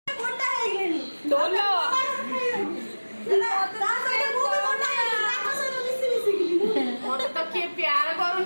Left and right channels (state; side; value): inverted; both; correlation -1.00